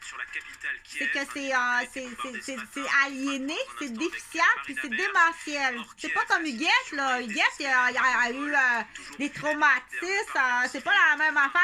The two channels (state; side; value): identical; both; correlation 1.00